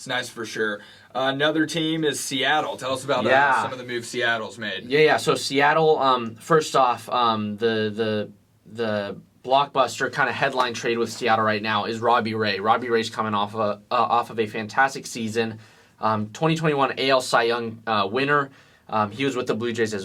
nice for sure. Another team is Seattle. Tell us about some of the moves Seattle's made. Yeah. So Seattle, first off, the blockbuster kind of headline trade with Seattle right now is Robbie Ray. Robbie Ray's coming off of a fantastic season. 2021 AL Cy Young winner. He was with the Blue Jays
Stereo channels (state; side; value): identical; both; correlation 1.00